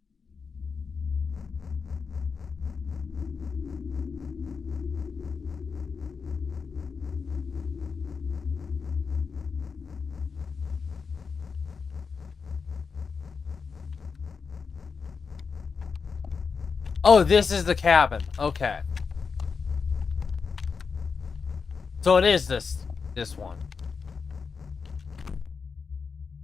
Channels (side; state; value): right; quieter; 5.4 dB